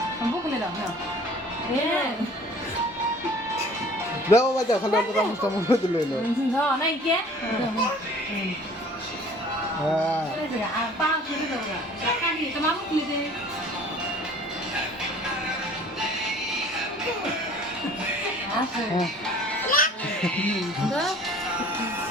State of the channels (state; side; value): normal; both; correlation 0.50